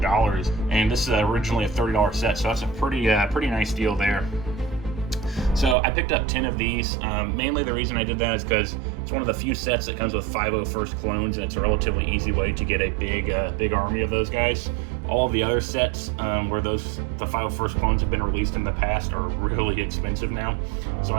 and this is originally a $30 set, so that's a pretty nice deal there. So I picked up 10 of these. Mainly the reason I did that is because it's one of the few sets that comes with 501st clones, and it's a relatively easy way to get a big army of those guys. All of the other sets where the 501st clones have been released in the past are really expensive now. So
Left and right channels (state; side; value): drops out; left; at 5.8 s